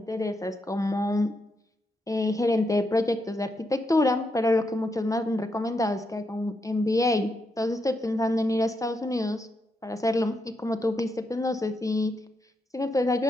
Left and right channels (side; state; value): both; normal; correlation 0.82